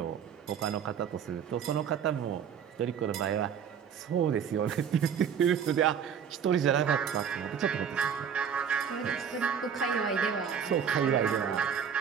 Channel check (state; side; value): quieter; left; 7.6 dB